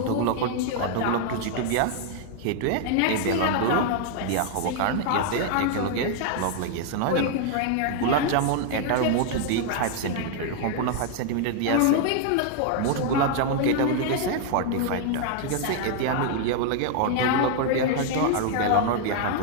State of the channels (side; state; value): both; different; correlation 0.00